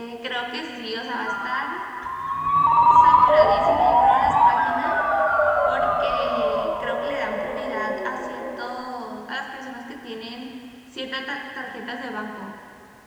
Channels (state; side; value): identical; both; correlation 1.00